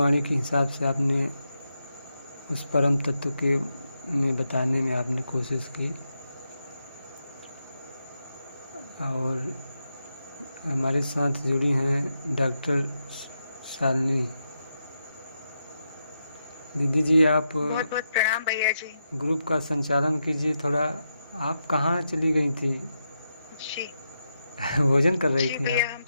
के हिसाब से आपने उस परम तत्व के में बताने में आपने कोशिश की। और हमारे साथ जुड़ी हैं डॉक्टर शालिनी दीदी जी। आप बहुत बहुत प्रणाम भैया जी। ग्रुप का संचालन कीजिए थोड़ा। आप कहाँ चली गई थी? जी भोजन कर रही जी थी भैया, आप? हम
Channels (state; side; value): inverted; both; correlation -0.85